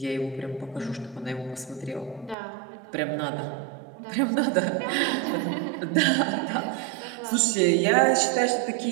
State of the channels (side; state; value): left; drops out; at 2.4 s